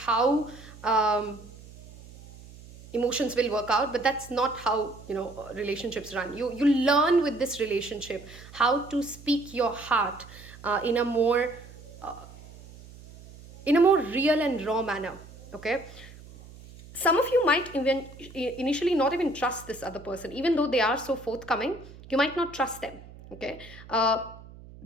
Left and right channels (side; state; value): right; noise; hum, 19 dB below the sound